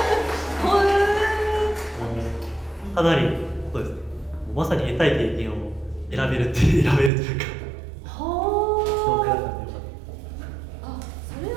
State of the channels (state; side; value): drops out; left; at 7.1 s